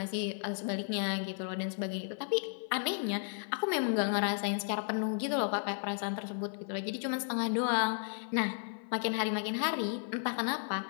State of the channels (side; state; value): right; silent; 55 dB below the other